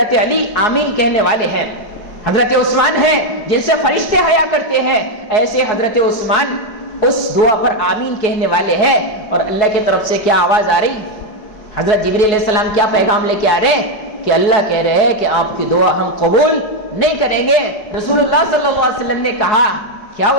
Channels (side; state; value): right; late; 4.7 ms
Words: علی آمین کہنے والے ہیں۔ حضرت عثمان ہیں جن سے فرشتے حیا کرتے ہیں، ایسے حضرت عثمان اس دعا پر آمین کہنے والے ہیں۔ اور اللہ کی طرف سے کیا آواز آ رہی؟ حضرت جبریل علیہ السلام کیا پیغام لے کے آ رہے ہیں کہ اللہ کہہ رہے ہیں کہ آپ کی دعا ہم قبول نہیں کریں گے۔ رسول اللہ صلی اللہ علیہ وسلم نے کہا کیا